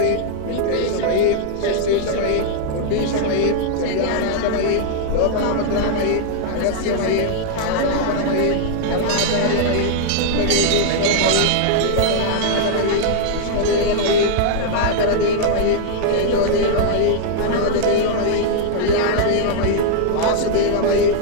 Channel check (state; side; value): different; both; correlation 0.00